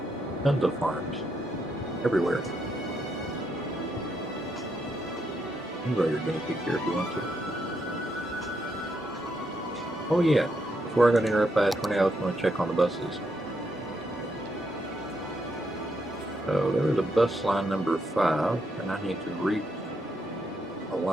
Tons of farms. Everywhere. You can grow your guinea pig here if you want to. Oh yeah, before I got interrupted by a tornado, I was going to check on the buses. So there was a bus line number 5, and I need to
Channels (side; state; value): both; normal; correlation 0.79